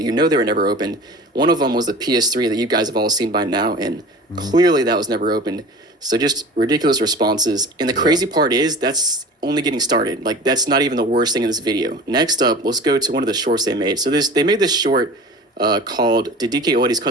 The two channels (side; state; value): both; normal; correlation 0.38